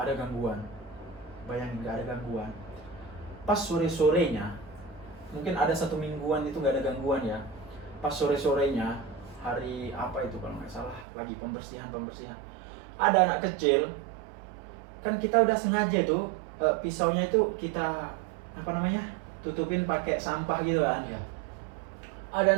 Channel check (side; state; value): left; drops out; at 11.1 s